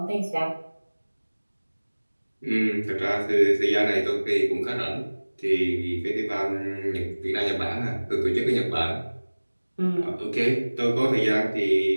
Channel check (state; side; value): inverted; both; correlation -1.00